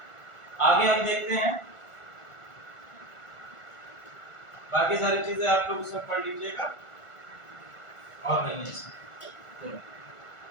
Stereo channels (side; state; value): right; late; 1.4 ms